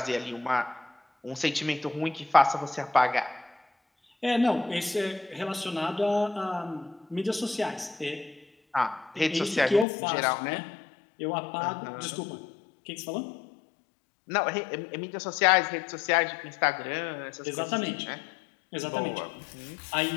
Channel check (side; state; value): right; drops out; at 9.9 s